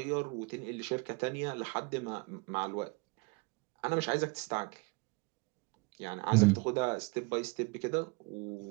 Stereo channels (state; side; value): quieter; left; 28.3 dB